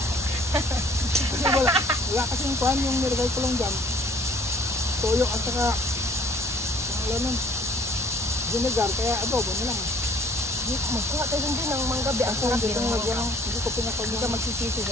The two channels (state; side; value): normal; both; correlation 0.58